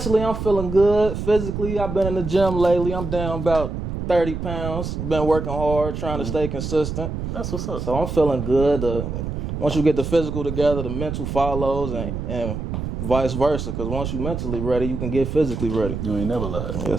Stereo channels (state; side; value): noise; right; rumble, 5 dB below the sound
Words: I'm feeling good. Physically, I've been in the gym lately. I'm down about 30 pounds. Been working hard, trying to stay consistent. That's what's up. So I'm feeling good. Once you get the physical together, the mental follows and vice versa. Because once you're mentally ready, you can get physically ready. You ain't never lied.